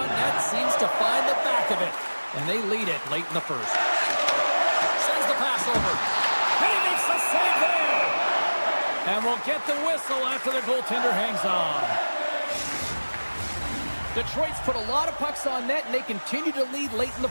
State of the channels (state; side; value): inverted; both; correlation -1.00